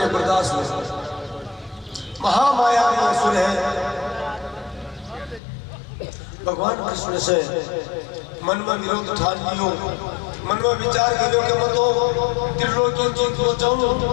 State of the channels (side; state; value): right; drops out; at 5.4 s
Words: बर्दाश्त हो, महामाया में असुर है। भगवान कृष्ण से मन में विरोध ठान लियो, मन में विचार करियो कि मैं तो त्रिलोकी जीत को चाहूं,